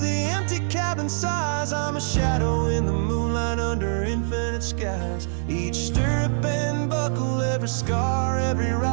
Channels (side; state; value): left; silent; 62 dB below the other